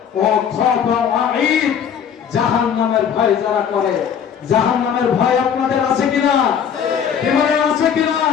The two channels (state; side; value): quieter; right; 8.0 dB